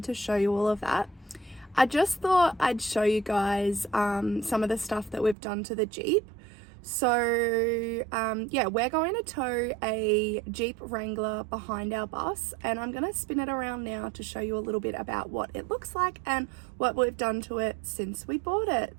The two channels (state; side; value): drops out; left; at 5.4 s